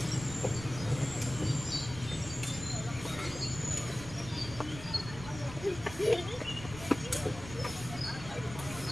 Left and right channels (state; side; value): noise; right; rumble, 12 dB below the sound